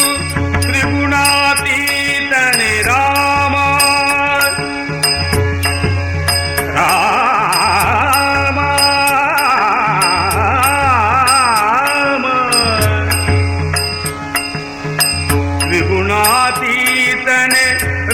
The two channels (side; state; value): both; identical; correlation 1.00